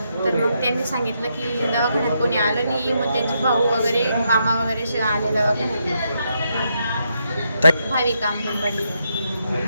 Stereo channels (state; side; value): inverted; both; correlation -0.79